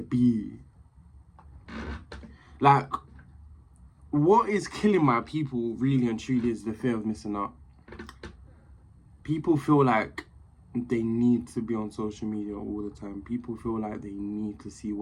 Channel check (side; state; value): both; identical; correlation 1.00